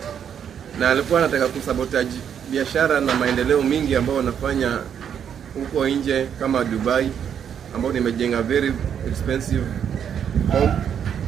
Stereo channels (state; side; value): quieter; left; 8.4 dB